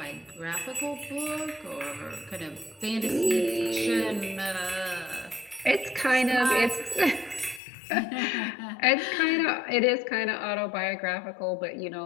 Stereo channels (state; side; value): drops out; right; at 7.6 s